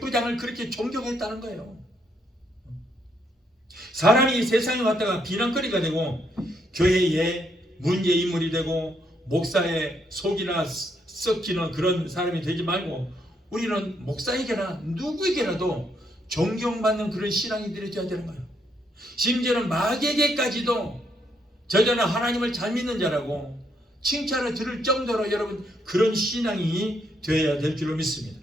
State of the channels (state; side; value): normal; both; correlation 0.74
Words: 그렇게 존경했다는 거예요. 사람이 세상에 왔다가 비난거리가 되고 교회의 문제인물이 되고 목사의 속이나 썩히는 그런 사람이 되지 말고 우리는 목사에게나 누구에게라도 존경받는 그런 신앙인들이 되어야 되는 거예요. 심지어는 마귀에게까지도 저자는 하나님을 잘 믿는 자라고 칭찬을 들을 정도로 여러분 그런 신앙이 되어야 될 줄로 믿습니다.